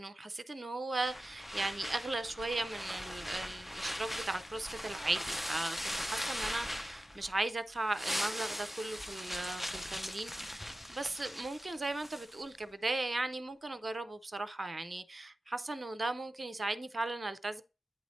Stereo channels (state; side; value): normal; both; correlation 0.94